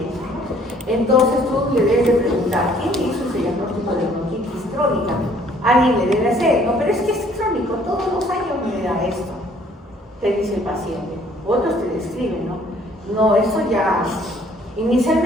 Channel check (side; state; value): both; normal; correlation 0.60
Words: eso. Entonces tú le debes de preguntar, ¿quién hizo ese diagnóstico de bronquitis crónica? Alguien le debe hacer, no, pero es que es crónico, todos los años me da esto, te dice el paciente. Otros te describen, ¿no? No, eso ya...